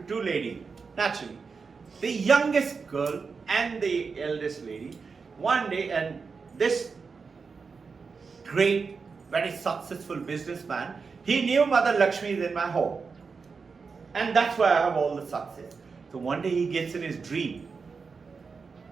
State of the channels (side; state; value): left; quieter; 5.0 dB